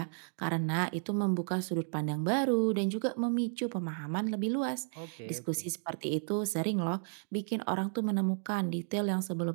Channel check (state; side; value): silent; left; 56 dB below the other